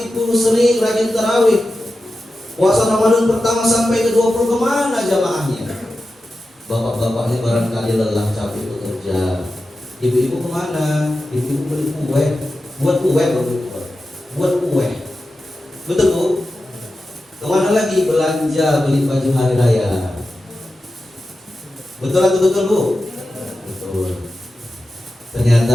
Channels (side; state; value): both; normal; correlation 0.92